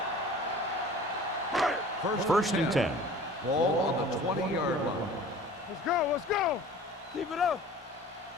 First and 10. Ball on the 20-yard line. Let's go, let's go. Keep it up.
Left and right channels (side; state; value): both; normal; correlation 0.44